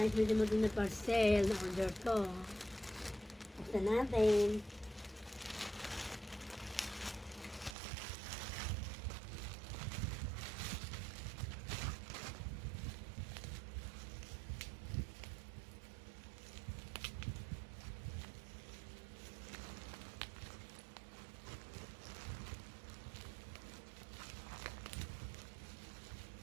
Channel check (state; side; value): drops out; left; at 7.8 s